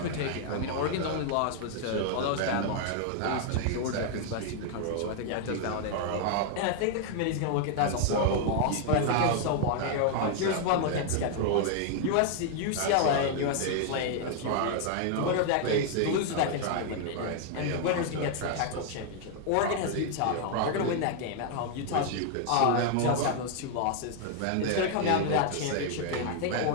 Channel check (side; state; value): both; different; correlation 0.00